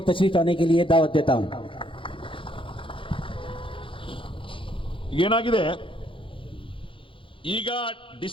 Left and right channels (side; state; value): right; late; 0.25 ms